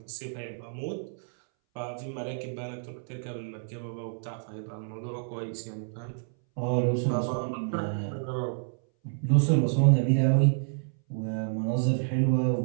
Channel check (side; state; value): left; silent; 59 dB below the other